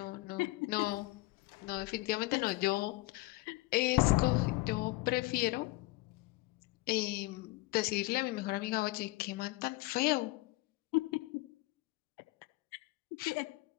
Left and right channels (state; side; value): quieter; right; 21.0 dB